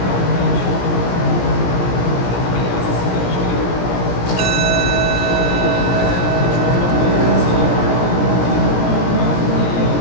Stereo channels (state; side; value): late; right; 17 ms